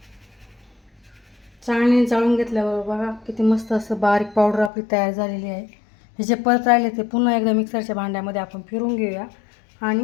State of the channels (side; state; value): right; drops out; at 4.7 s